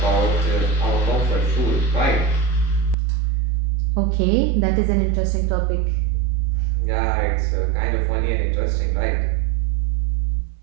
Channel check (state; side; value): drops out; left; at 3.0 s